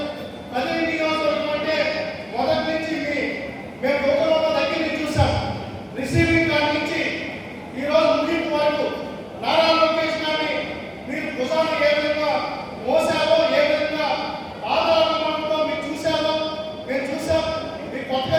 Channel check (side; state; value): both; identical; correlation 1.00